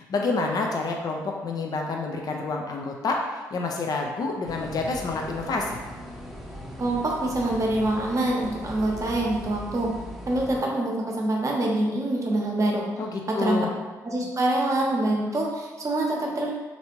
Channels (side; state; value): both; normal; correlation 0.72